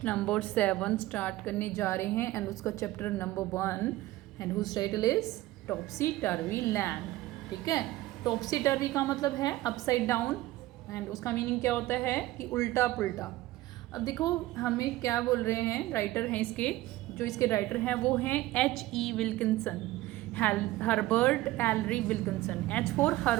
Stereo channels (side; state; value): left; quieter; 17.0 dB